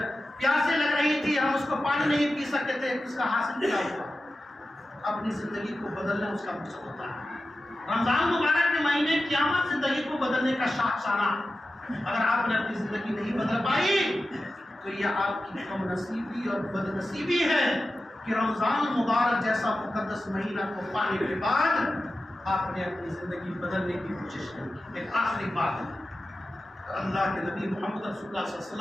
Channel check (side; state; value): both; normal; correlation 0.93